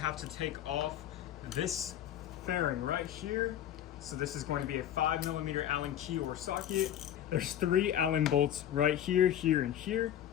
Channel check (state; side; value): quieter; right; 10.9 dB